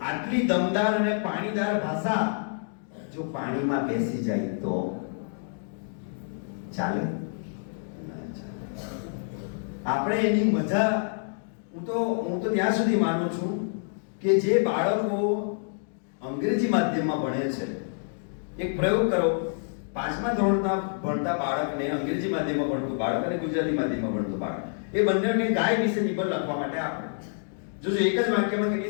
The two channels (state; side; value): silent; right; digital silence